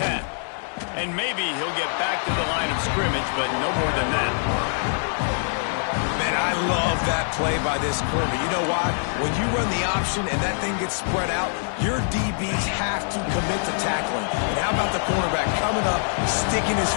And maybe he'll get back to the line of scrimmage, but no more than that. Man, I love that play by this corner. You know why? When you run the option and that thing gets spread out, your DBs have to commit to tackling. And how about the cornerback coming up, sticking his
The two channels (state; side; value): silent; right; 61 dB below the other